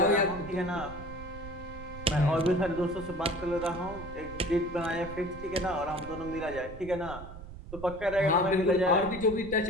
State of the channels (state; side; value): noise; right; rumble, 13 dB below the sound